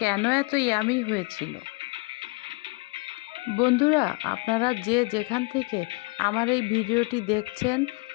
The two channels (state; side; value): quieter; right; 27.2 dB